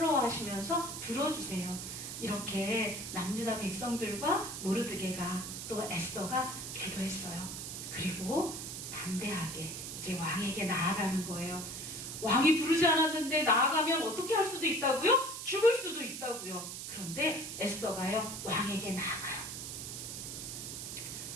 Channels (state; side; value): noise; right; hiss, 7 dB below the sound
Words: 들어주세요. 이렇게 남유다 백성들과 모르드게가 또 에스더가 기도했어요. 그리고 담대하게 이제 왕에게 나아가는 거예요. 왕이 부르지 않았는데 나아가면 어떻게 할 수도 있다고요? 죽을 수도 있다고요. 그런데 에스더가요, 왕에게 나아가요.